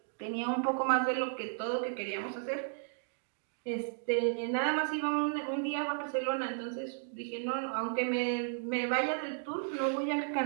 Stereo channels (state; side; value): silent; left; digital silence